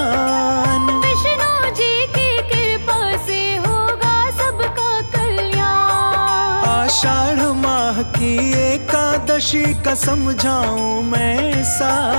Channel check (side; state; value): both; inverted; correlation -1.00